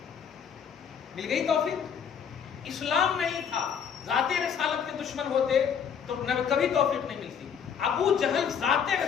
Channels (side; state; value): right; quieter; 7.4 dB